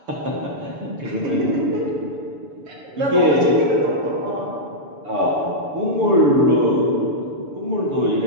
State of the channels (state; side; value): late; left; 7.0 ms